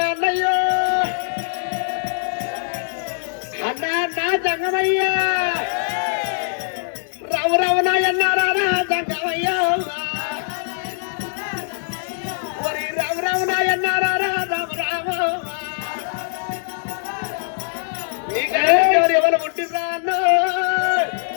అన్నయ్యో అన్నా అన్నా సంగమయ్యా రావు రావునా ఎన్నారా సంగమయ్యా ఒరి రావు రావునా ఎన్నారా రాము రాము ఎవరు పుట్టిరా అన్న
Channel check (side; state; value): right; silent; 64 dB below the other